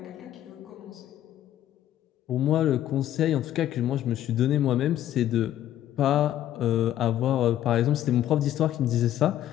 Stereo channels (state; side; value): quieter; right; 12.2 dB